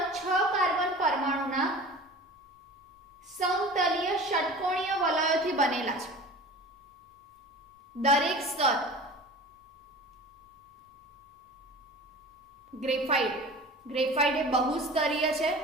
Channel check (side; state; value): both; normal; correlation 0.38